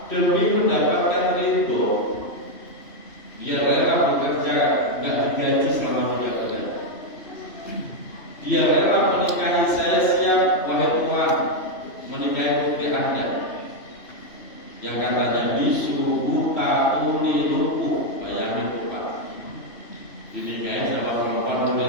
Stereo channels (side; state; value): right; late; 2.9 ms